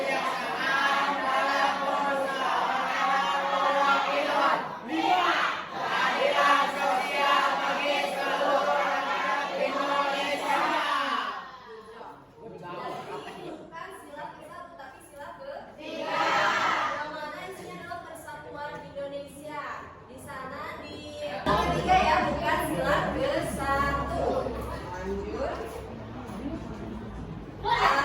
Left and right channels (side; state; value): both; identical; correlation 1.00